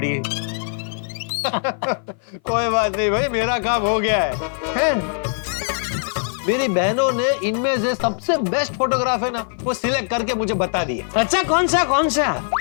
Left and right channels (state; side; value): silent; right; 57 dB below the other